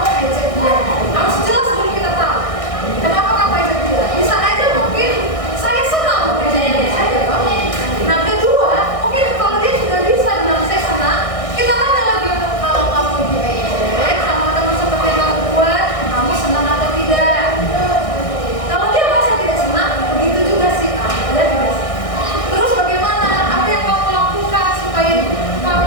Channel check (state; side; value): late; right; 1.6 ms